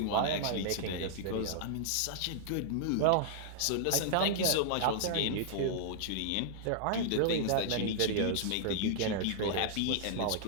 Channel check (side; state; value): both; different; correlation -0.01